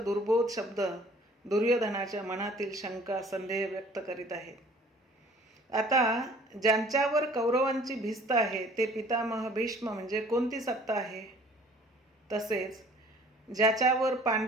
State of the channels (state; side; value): normal; both; correlation 0.52